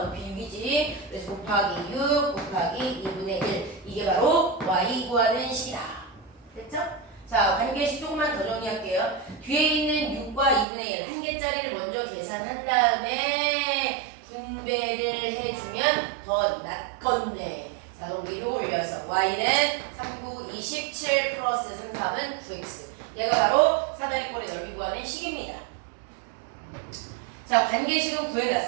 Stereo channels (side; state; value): left; drops out; at 10.7 s